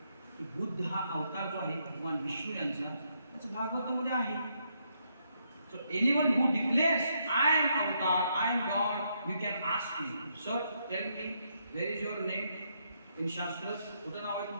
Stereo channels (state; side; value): inverted; both; correlation -0.77